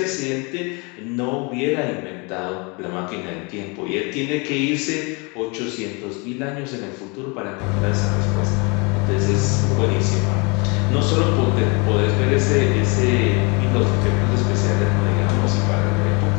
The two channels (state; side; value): quieter; right; 30.4 dB